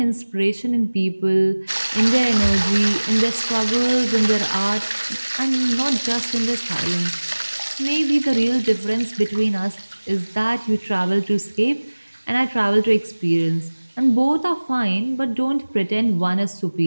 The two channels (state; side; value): inverted; both; correlation -1.00